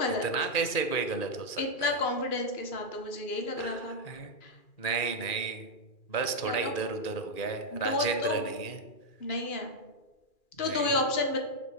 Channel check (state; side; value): late; right; 2.4 ms